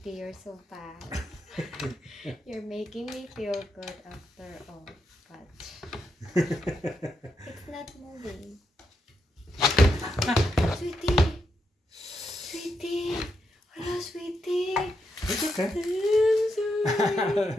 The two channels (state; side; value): normal; both; correlation 0.82